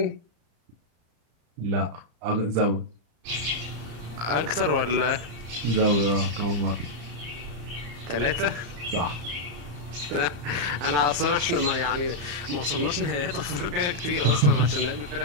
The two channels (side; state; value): left; late; 34 ms